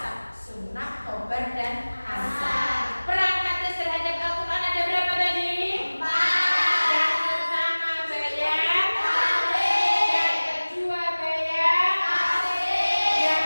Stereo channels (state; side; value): inverted; both; correlation -1.00